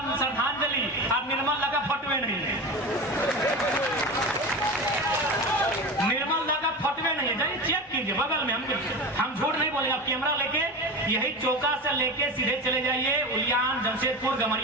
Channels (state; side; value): normal; both; correlation 0.27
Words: श्रद्धांजलि। अब निर्मल लगा फटवे नहीं है, निर्मल दा का फटवे नहीं है। जाइए चेक कीजिए बगल में, हम झूठ नहीं बोलेंगे। आप कैमरा लेके यही चौका से लेके सीधे चले जाइए, उलियान, जमशेदपुर,